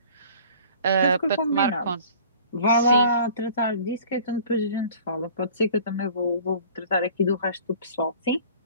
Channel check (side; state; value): both; inverted; correlation -0.48